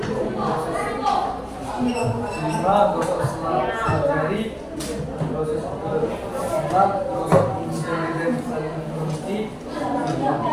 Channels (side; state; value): both; identical; correlation 1.00